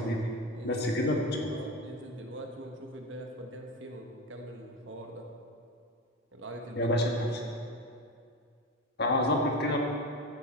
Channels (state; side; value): normal; both; correlation 0.24